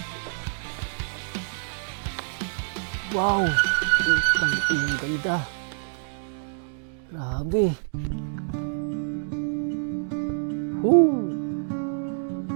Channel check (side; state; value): left; silent; digital silence